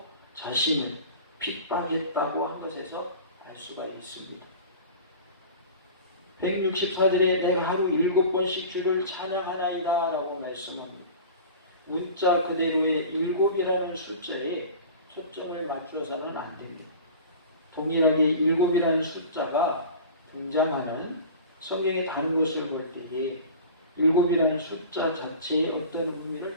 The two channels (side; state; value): both; inverted; correlation -0.38